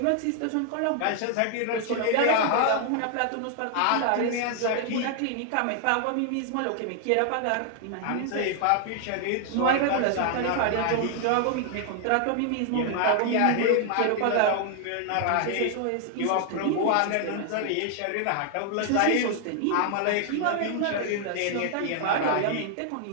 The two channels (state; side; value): different; both; correlation 0.00